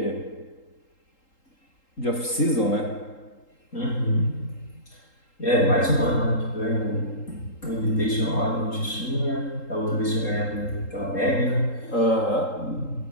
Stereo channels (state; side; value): late; right; 3.8 ms